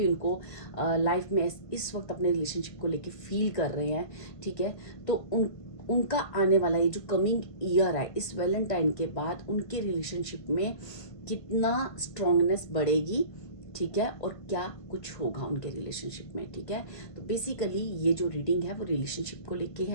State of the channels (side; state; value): right; late; 1.5 ms